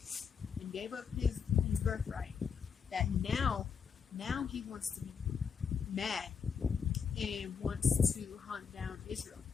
and gave up his birthright, that now he wants to be mad and wants to hunt down Israel.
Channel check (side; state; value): right; quieter; 6.5 dB